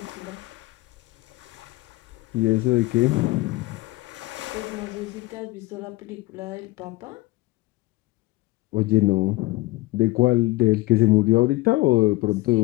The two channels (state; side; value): quieter; right; 19.9 dB